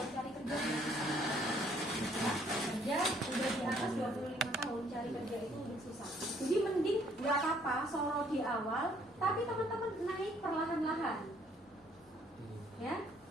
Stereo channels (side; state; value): both; normal; correlation 0.64